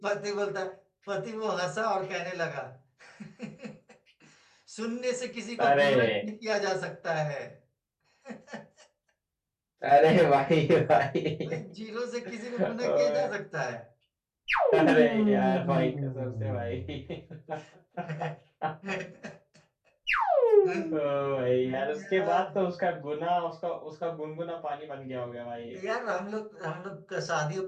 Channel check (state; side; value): identical; both; correlation 1.00